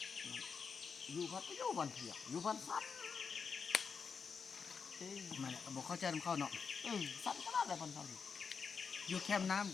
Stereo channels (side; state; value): right; quieter; 5.8 dB